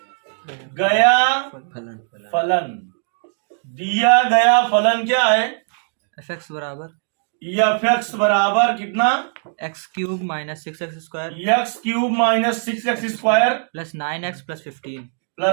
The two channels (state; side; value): silent; left; digital silence